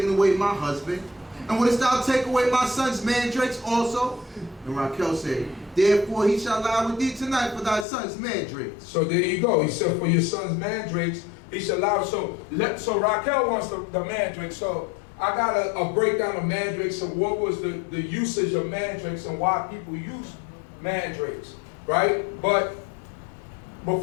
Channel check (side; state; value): right; drops out; at 7.9 s